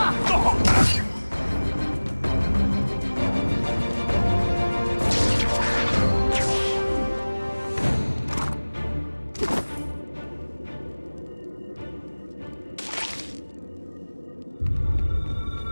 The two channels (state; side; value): inverted; both; correlation -1.00